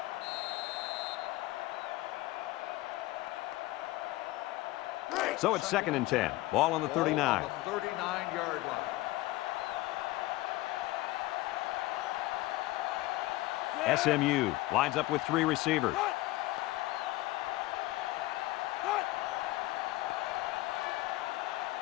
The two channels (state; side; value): quieter; right; 18.4 dB